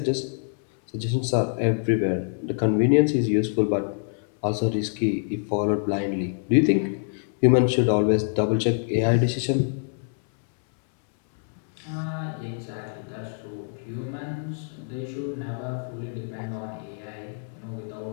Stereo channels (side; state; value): right; silent; 61 dB below the other